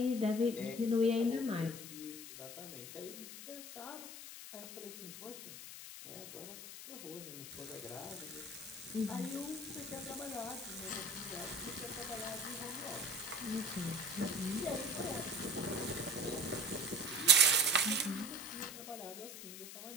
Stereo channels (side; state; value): left; noise; hiss, 11 dB below the sound